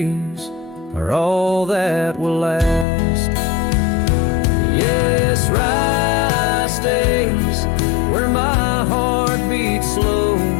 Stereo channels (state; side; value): drops out; right; at 2.9 s